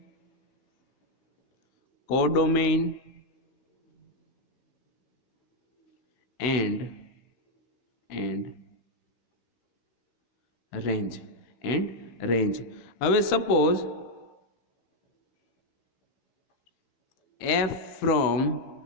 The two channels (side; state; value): right; late; 16 ms